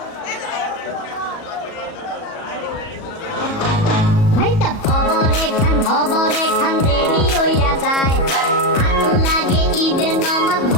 ভাইটা খবরে খান দেরি হইয়া যায়, হাতু লাগে ঈদের নামাজ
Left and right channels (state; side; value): late; right; 37 ms